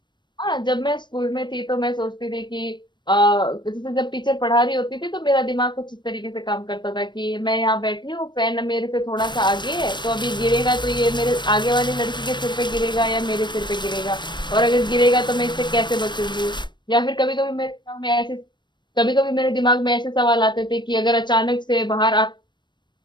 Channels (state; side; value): late; right; 0.22 ms